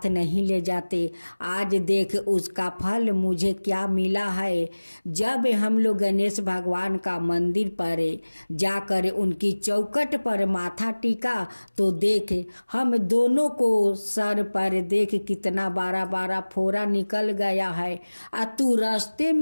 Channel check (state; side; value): inverted; both; correlation -1.00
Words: नहीं ले जाते। आज देख उसका फल मुझे क्या मिला है। जब हम लोग गणेश भगवान का मंदिर पर जाकर उनकी चौखट पर माथा टीका तो देख हम दोनों को सर पर देख कितना बारा बारा फोड़ा निकल गया है। तू रास्ते